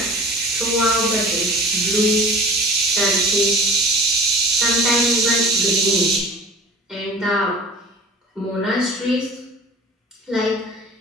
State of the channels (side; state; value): both; normal; correlation 0.41